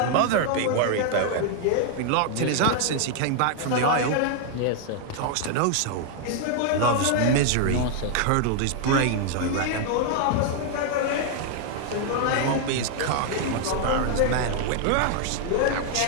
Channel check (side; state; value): both; different; correlation 0.00